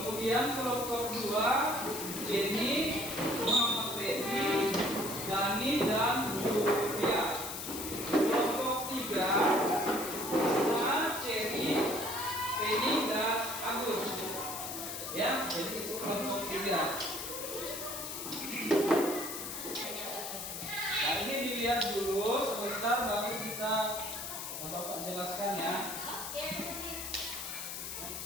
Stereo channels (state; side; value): noise; left; hiss, 6 dB below the sound